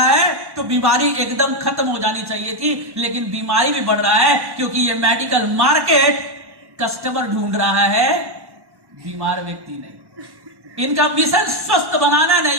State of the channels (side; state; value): left; late; 1.1 ms